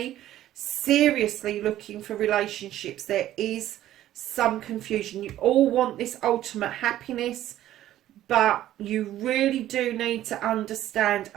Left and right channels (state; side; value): quieter; left; 13.1 dB